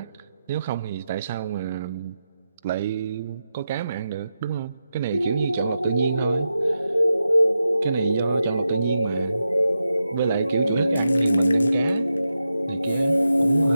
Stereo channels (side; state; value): both; inverted; correlation -0.88